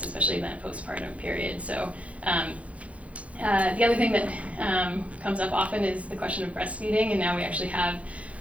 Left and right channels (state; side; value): late; left; 0.065 ms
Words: especially in that postpartum period. So the other thing that comes up often is the question of breastfeeding, and now we actually have